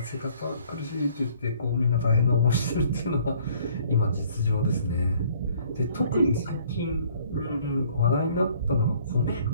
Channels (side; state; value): both; inverted; correlation -0.59